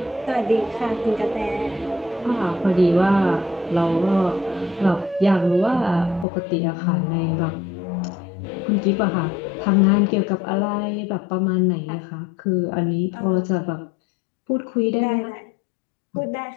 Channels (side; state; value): right; drops out; at 6.2 s